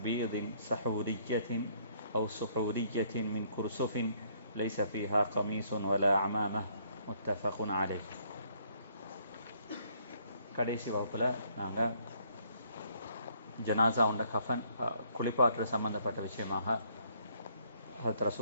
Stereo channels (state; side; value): inverted; both; correlation -0.66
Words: بيض سحورية أو سحورية من كرسف ليس فيها قميص ولا عمامة. متفق عليه. கடைசி வகுப்பில் நாங்கள் ஜனாசா உண்ட கஃபன் குளிப்பாற்றல் சம்பந்தப்பட்ட விஷயமாக ஹஜ்ரத்